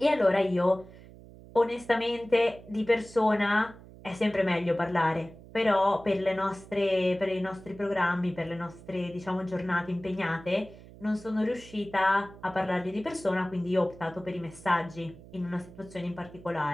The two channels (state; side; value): noise; right; hum, 19 dB below the sound